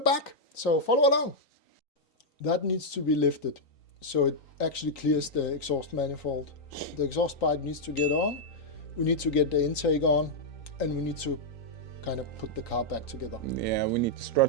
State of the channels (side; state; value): right; late; 3.9 ms